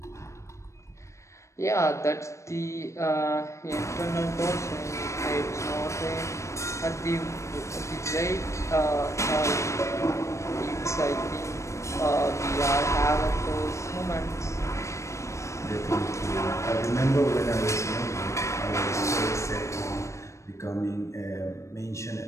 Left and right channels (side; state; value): right; late; 0.14 ms